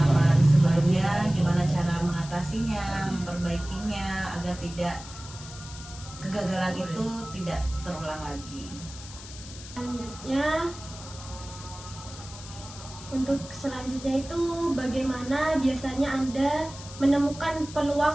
sebelumnya, gimana cara mengatasinya, memperbaikinya agar tidak kegagalan itu tidak terulang lagi. Selanjutnya itu, bagaimana biasanya Anda menemukan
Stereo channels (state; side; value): noise; left; hiss, 15 dB below the sound